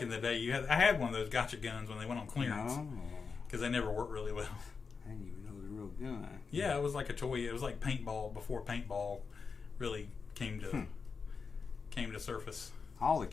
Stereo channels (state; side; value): quieter; right; 5.2 dB